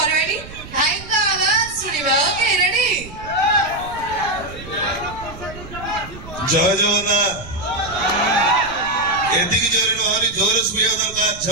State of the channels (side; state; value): right; noise; rumble, 15 dB below the sound